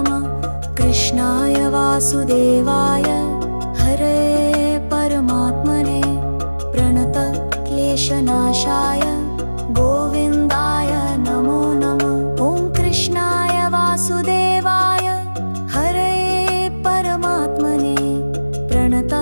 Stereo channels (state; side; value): inverted; both; correlation -1.00